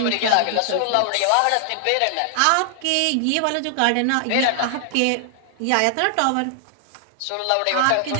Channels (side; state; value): both; different; correlation 0.00